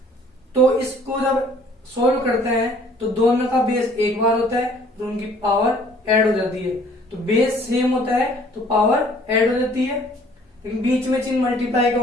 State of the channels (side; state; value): both; normal; correlation 0.56